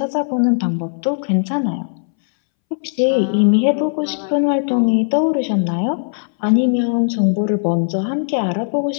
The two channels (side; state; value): right; silent; 65 dB below the other